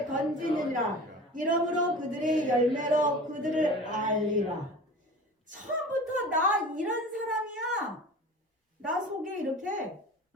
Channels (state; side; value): normal; both; correlation 0.38